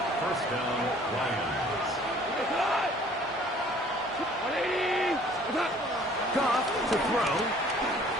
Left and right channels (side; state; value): both; normal; correlation 0.54